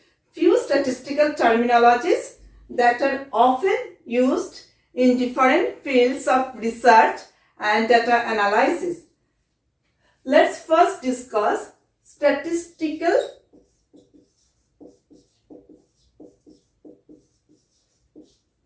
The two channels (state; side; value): identical; both; correlation 1.00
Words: few statistical terminologies that are often used in different fields of research and data analysis. Let's first discuss statistical